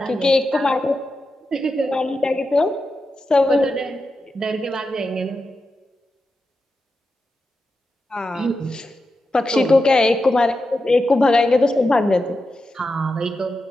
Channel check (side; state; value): both; normal; correlation 0.89